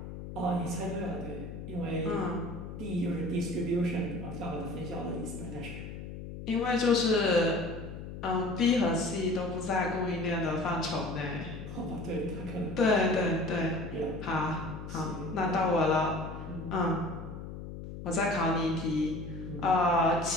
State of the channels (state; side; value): noise; left; hum, 10 dB below the sound